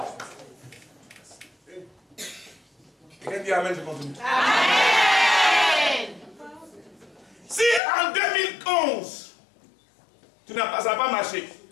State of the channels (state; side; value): drops out; right; at 7.8 s